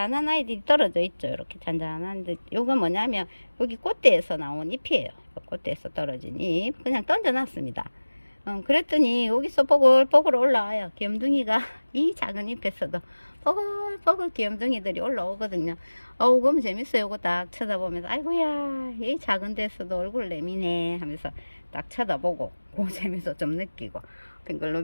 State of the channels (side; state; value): both; inverted; correlation -1.00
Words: 아이들이 떨어져 있죠. 이렇게 잔잔한데, 요건 뭐냐면 여기 꽃대에서 나온 잎이에요. 꽃대에서 떨어진 잎 그냥 던져놨습니다. 그랬더니 여기서 뽀글뽀글 올라와요. 귀염둥이가 이 작은 잎에서도 뽀글뽀글 귀염둥이들이 올라오거든요. 그럼 재밌어요. 이거 딱 쳐다보면서 아이고야, 이 작은 데서도 얼굴 내미네 하면서 딱 쳐다보고 그 재미도 좀 느끼고,